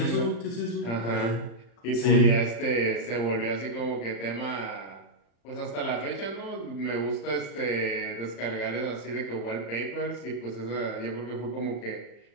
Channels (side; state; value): right; late; 35 ms